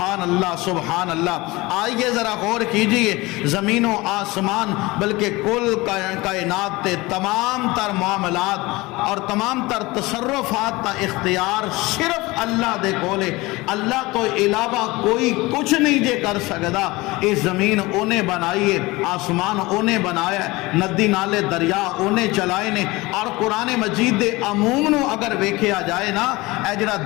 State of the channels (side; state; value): right; quieter; 21.8 dB